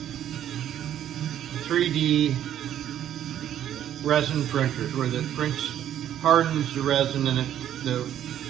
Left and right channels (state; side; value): quieter; left; 10.9 dB